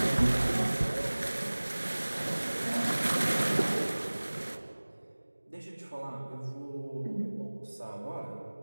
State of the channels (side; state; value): both; inverted; correlation -1.00